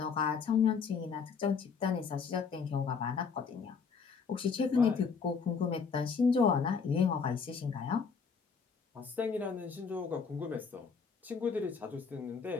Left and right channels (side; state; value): right; quieter; 5.7 dB